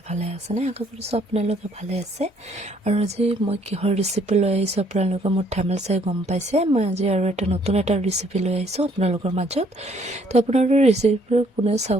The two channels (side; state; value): both; normal; correlation 0.64